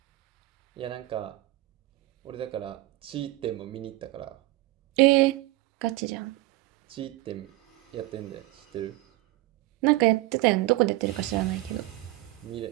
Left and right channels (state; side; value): quieter; left; 18.8 dB